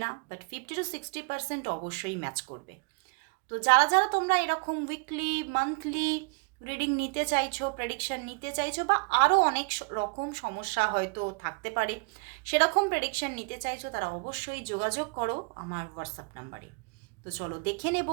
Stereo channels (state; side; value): quieter; left; 33.3 dB